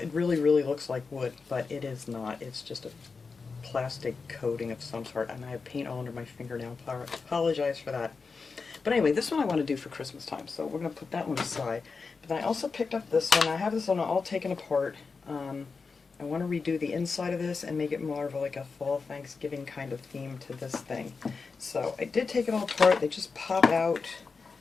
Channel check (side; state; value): right; quieter; 4.7 dB